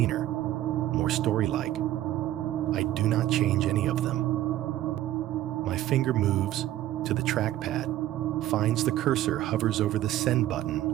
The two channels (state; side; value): quieter; left; 13.9 dB